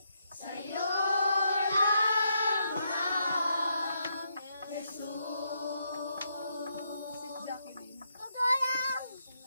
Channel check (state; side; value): inverted; both; correlation -0.79